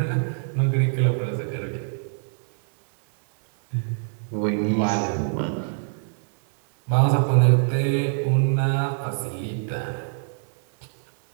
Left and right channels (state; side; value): silent; left; 62 dB below the other